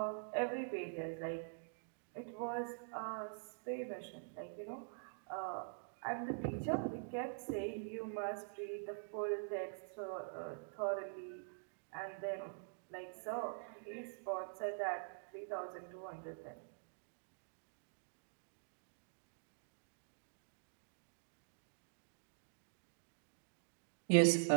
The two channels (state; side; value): silent; left; digital silence